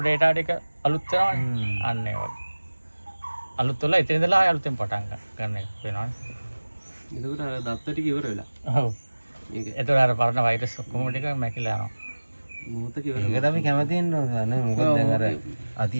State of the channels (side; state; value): both; inverted; correlation -1.00